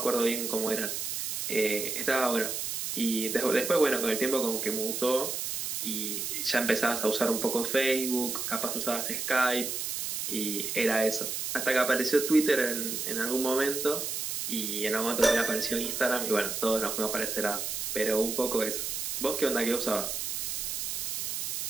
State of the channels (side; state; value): right; noise; hiss, 3 dB below the sound